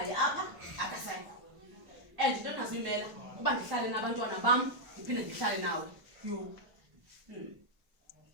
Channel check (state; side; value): late; left; 1.2 ms